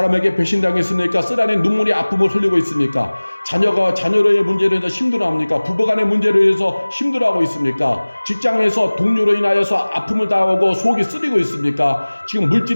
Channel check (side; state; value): both; inverted; correlation -1.00